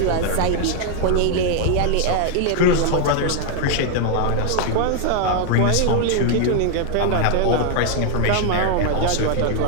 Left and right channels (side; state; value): both; different; correlation 0.00